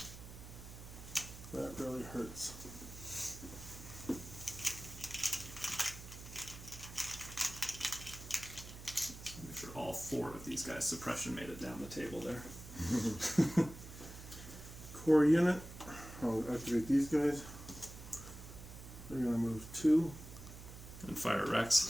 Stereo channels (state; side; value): noise; right; hum, 13 dB below the sound